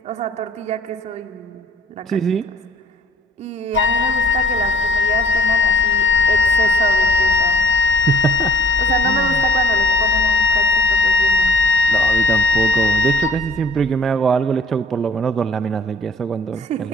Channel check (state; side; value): normal; both; correlation 0.54